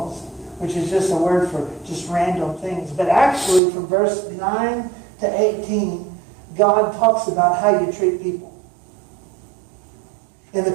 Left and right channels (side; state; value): left; drops out; at 3.6 s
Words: which is just a word for just random things. But actually, from verse 9 to 18, God talks about how you treat people. And